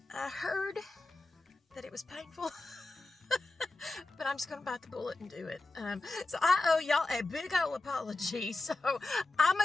heard that it was painful. But I'm just gonna bite the bullet and do it. So I owe y'all a big ol' apology. So I'm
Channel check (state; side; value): quieter; right; 3.2 dB